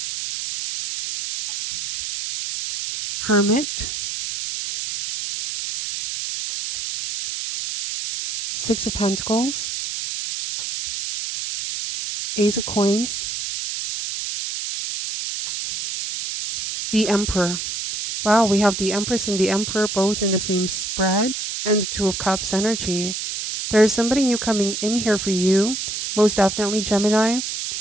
Hermit. Six of Pentacles. Ace of Coins. The Emperor. Wow, we have the Empress and the Emperor both in the same spread, and the Two of Cups energy. There is somebody new coming in here for you. Most definitely, Gemini.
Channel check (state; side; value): noise; right; hiss, 5 dB below the sound